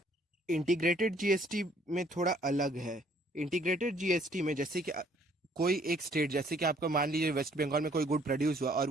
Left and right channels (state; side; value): normal; both; correlation 0.62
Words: इंटीग्रेटेड जीएसटी में थोड़ा अलग है। इंटीग्रेटेड जीएसटी में जैसे कि कोई एक स्टेट, जैसे कि आपका मान लीजिए वेस्ट बंगाल में कोई गुड प्रोड्यूस हुआ और